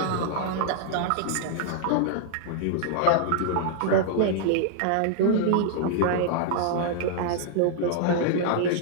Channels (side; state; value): both; different; correlation -0.01